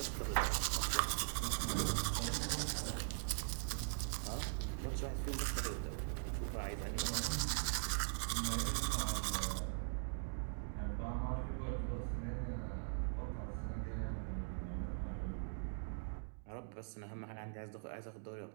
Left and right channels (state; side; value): silent; left; digital silence